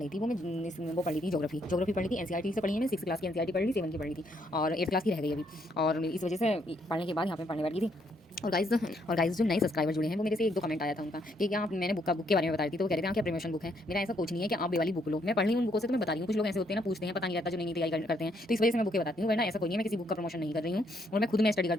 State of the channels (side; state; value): both; normal; correlation 0.72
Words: थी वो पढ़ रही थी ज्योग्राफी पढ़ी थी। एनसीईआरटी से पढ़ी है, मैं 6 क्लास की एनसीईआरटी पढ़ ली, 7 की पढ़ी थी और 8 क्लास की रह गई अभी। और इस वजह से पढ़ने के बाद यहाँ पे पढ़ने बैठी थी। और गाइस जो नए सब्सक्राइबर जुड़े हैं वो मेरे से 1-2 कमेंट आया था उनका कि क्या आप, मैंने बुक के बारे में बता रही थी तो वो कह रहे थे हाँ क्या प्रमोशन बुक है। मेरा ऐसा कुछ नहीं है कि आप ये वाली बुक लो, मैं पढ़ रही हूँ उन बुकों से तो मैं बता रही हूँ। कुछ लोग ऐसे होते हैं ना, पूछते हैं, पता नहीं रहता जो नई तैयारी करते हैं, तो इस वजह से मैं बुकें बताती हूँ, वरना ऐसा कोई नहीं है, मैं किसी बुक का प्रमोशन नहीं कर रही हूँ। और मैं खुद में स्टडी